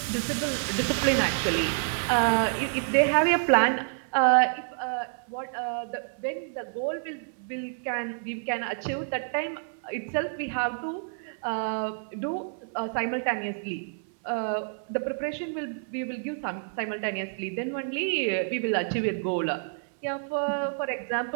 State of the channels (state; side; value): silent; left; 59 dB below the other